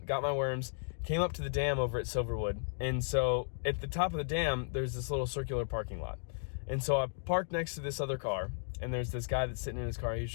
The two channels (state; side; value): silent; right; digital silence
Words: got my worms, came up to the dam over at Silverwood. And so at the top of the dam, there's this little circular parking lot. And so I parked next to this other car, and there's this guy that's sitting in his car. He's